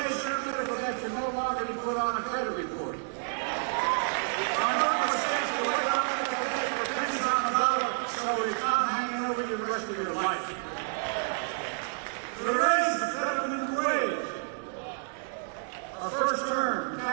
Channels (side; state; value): left; silent; 58 dB below the other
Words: of medical debt can no longer be put on a credit report. Our normal states will wait on medical debt for pennies on the dollar, so it's not hanging over you the rest of your life. We raised the federal minimum wage. Our first term